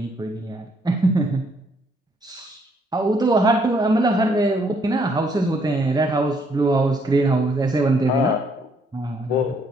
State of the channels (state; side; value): normal; both; correlation 0.69